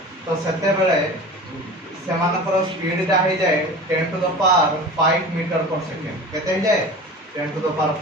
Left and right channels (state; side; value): normal; both; correlation 0.36